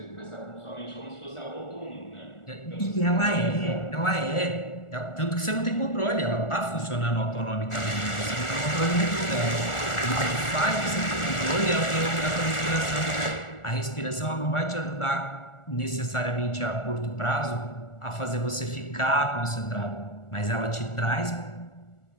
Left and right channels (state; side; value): late; right; 1.4 ms